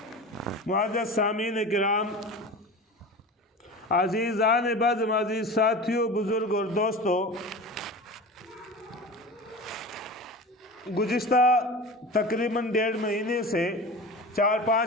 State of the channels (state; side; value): normal; both; correlation 0.32